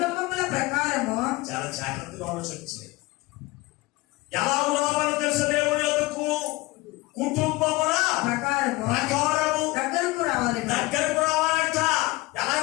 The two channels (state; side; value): quieter; right; 21.2 dB